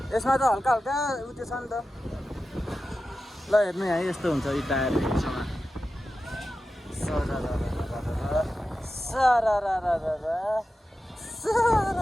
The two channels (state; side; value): normal; both; correlation 0.93